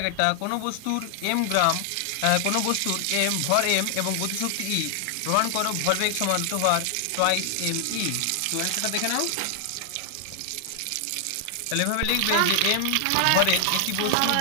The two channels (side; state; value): both; different; correlation 0.00